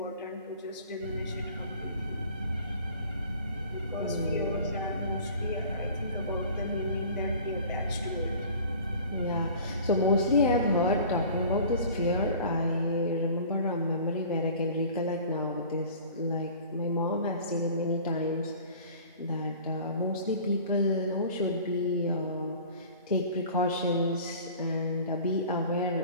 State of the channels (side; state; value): both; inverted; correlation -0.44